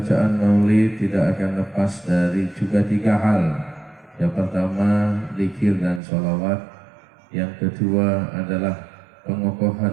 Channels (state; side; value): drops out; left; at 6.0 s